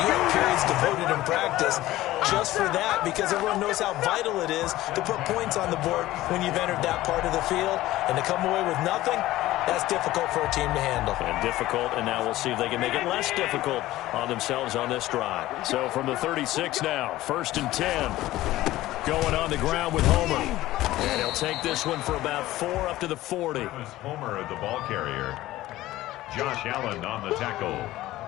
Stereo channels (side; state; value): right; quieter; 16.1 dB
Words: you have periods devoted in practice just for that because everyone knows how vital it is to put points on the board when you've entered that part of the field. And to come away with nothing, that's difficult for a team to handle. And difficult, and now we'll see if they can make it less difficult on themselves on this drive. So from the 36 now, 1st and 10. Going on the ground with Homer. And he'll take this one for about 4 up to the 40. Homer, the ball carrier. Josh Allen on the tackle.